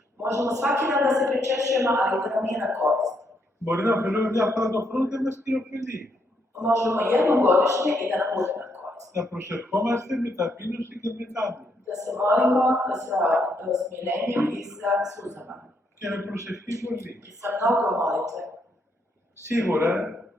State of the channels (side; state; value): both; normal; correlation 0.76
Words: Možemo svaki dan da se pričešćujemo, ali da nam nije na korist. Μπορεί να ωφελούμε μια φορά το χρόνο και να μας κυριοφελεί. Možemo jednom godišnje i da nam bude na korist. Να προσευχόμαστε με ταπείνωση και με τάμπη. Da se molimo sa smirenjem i sa suzama. Και με προσευχή πολύ. I sa mnogo molitve. Σίγουρα